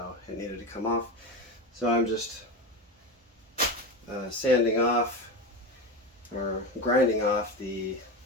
it needed to come off. So I'm just sanding off or grinding off the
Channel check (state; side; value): normal; both; correlation 0.21